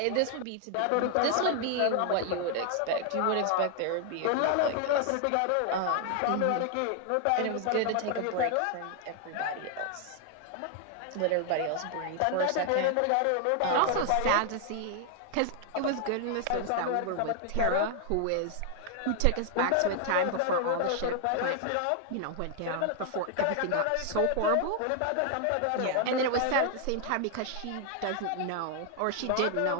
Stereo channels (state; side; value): different; both; correlation 0.00